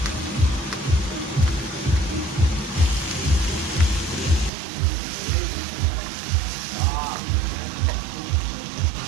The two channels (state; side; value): drops out; left; at 4.5 s